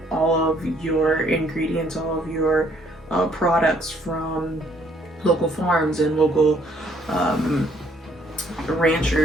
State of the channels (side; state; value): both; normal; correlation 0.65